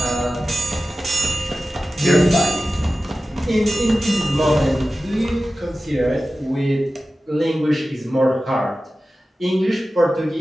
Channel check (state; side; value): normal; both; correlation 0.95